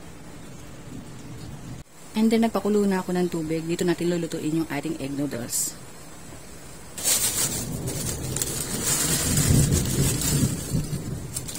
And then, nagpakulo na ako ng tubig. Dito natin lulutuin yung ating egg noodles.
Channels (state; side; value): identical; both; correlation 1.00